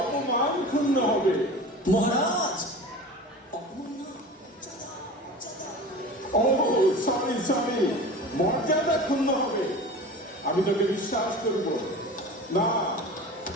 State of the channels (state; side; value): normal; both; correlation 0.35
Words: ক্ষুণ্ণ হবে। মহারাজ, ও সরি সরি, মর্যাদা ক্ষুণ্ণ হবে। আমি তোকে বিশ্বাস করব না।